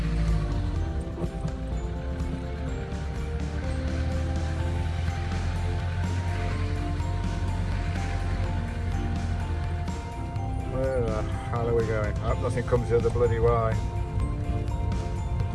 How are we going? I hope nothing comes the other bloody way.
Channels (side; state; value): both; identical; correlation 1.00